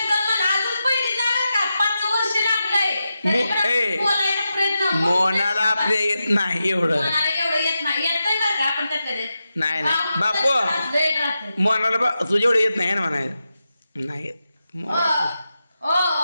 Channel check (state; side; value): inverted; both; correlation -0.90